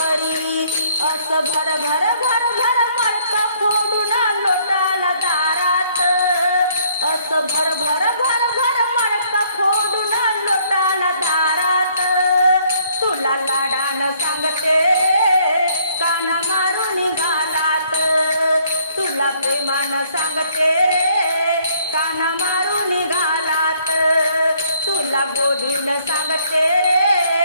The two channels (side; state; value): both; inverted; correlation -0.64